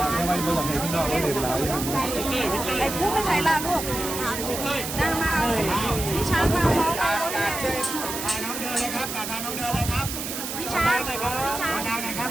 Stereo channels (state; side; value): noise; right; hiss, 5 dB below the sound